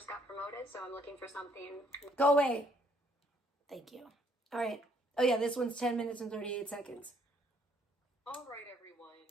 got promoted, so I'm looking for something. Go away. Thank you. All right. Oh, yeah, this one's 10 minutes and 38 seconds. All right, everyone.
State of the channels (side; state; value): both; normal; correlation 0.66